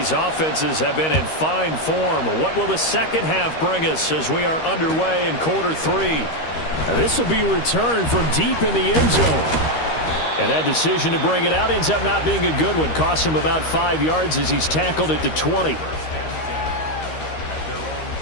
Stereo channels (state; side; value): late; right; 13 ms